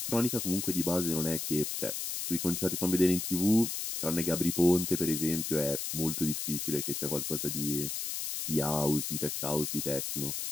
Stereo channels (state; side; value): noise; left; hiss, 3 dB below the sound